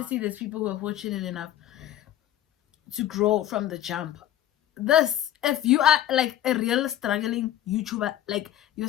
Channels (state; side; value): quieter; right; 12.0 dB